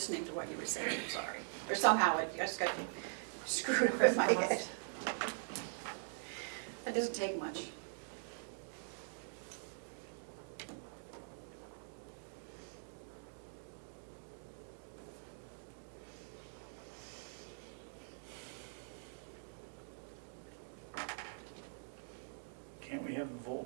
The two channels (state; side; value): silent; left; digital silence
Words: to what you were saying, I'm sorry. Or somehow it just got screwed up in my head. That doesn't take much. Can't we have a